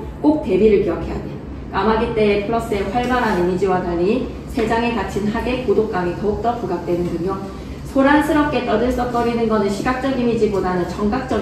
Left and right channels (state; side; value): identical; both; correlation 1.00